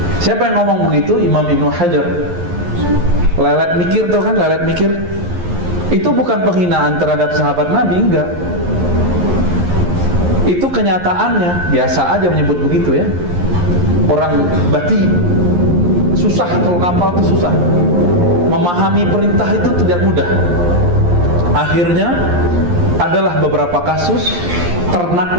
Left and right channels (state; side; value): late; left; 11 ms